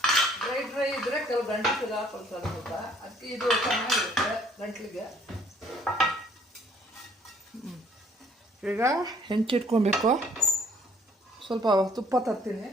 ಡ್ರೈ ಇದ್ದರೆ ಕೆಲವು ಗಂಟಲು ಹಾಕೊಳ್ತಾರೆ ಸ್ವಲ್ಪ, ಅದಕ್ಕೆ ಇದು ಚೆನ್ನಾಗಿರುತ್ತೆ ಗಂಟ್ಲಿಗೆ. ಈಗ ಹೆಂಚಿಟ್ಕೊಬೇಕು. ಸ್ವಲ್ಪ ತುಪ್ಪ ತರ್ತೀನಿ.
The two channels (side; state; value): both; normal; correlation 0.61